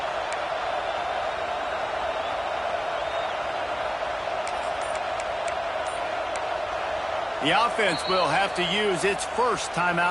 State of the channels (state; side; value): identical; both; correlation 1.00